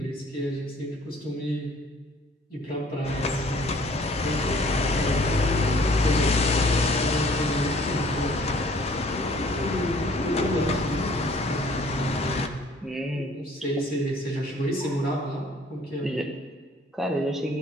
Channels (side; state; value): both; normal; correlation 0.56